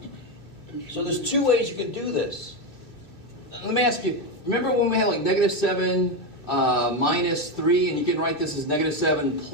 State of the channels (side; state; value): right; late; 2.8 ms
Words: So there's 2 ways you can do this. Let me ask you, remember when we had like negative 7 minus 3, and you can write this as negative 7